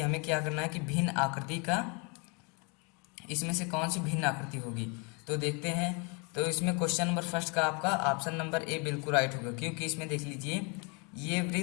हमें क्या करना है कि भिन्न आकृति का, इसमें से कौन सी भिन्न आकृति होगी। तो देखते हैं। तो इसमें क्वेश्चन नंबर फर्स्ट का आपका ऑप्शन नंबर ए बिल्कुल राइट होगा, क्योंकि इसमें देख लीजिए ये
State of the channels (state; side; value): quieter; right; 32.8 dB